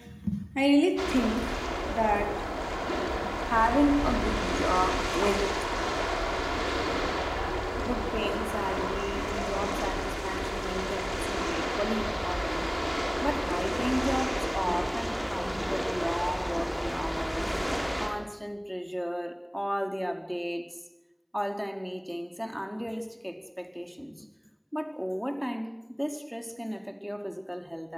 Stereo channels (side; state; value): both; identical; correlation 1.00